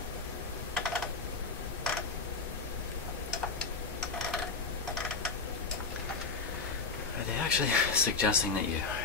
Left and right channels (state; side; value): quieter; right; 4.5 dB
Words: Actually suggesting that you